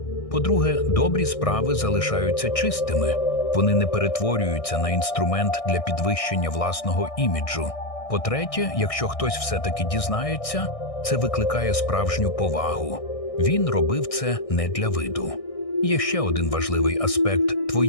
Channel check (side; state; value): right; late; 1.6 ms